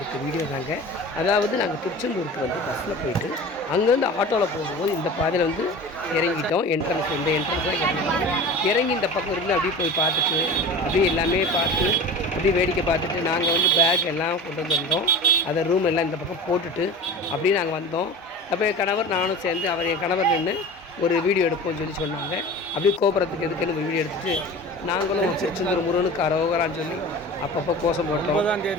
வீடியோ தாங்க. அதாவது நாங்கள் திருச்செந்தூருக்கு வந்து பஸ்ஸில் போயிட்டு அங்கேருந்து ஆட்டோவில் போகும்போது இந்த பாதையில் வந்து இறங்கிட்டோம். இந்த என்ட்ரன்ஸ் தான் இறங்கினோம். இறங்கி இந்த பக்கம் இருந்து அப்படியே போய் பார்த்துட்டு அப்படியே எல்லாமே பார்த்து அப்படியே வேடிக்கை பார்த்துட்டு நாங்கள் வந்து பேக் எல்லாம் கொண்டு வந்திருந்தோம். அதை ரூம் எல்லாம் இந்த பக்கம் போட்டுட்டு அப்படியே நாங்கள் வந்தோம். அப்போ என் கணவர் நானும் சேர்ந்து என் கணவர் நின்று ஒரு வீடியோ எடுப்போம்னு சொன்னாங்க. அப்படியே கோபுரத்துக்கு எதுக்குன்னு ஒரு வீடியோ எடுத்துகிட்டு நாங்களும் திருச்செந்தூர் முருகனுக்கு அரோகரான்னு சொல்லி அப்பப்போ கோஷம் போட்டோம்.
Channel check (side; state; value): both; normal; correlation 0.36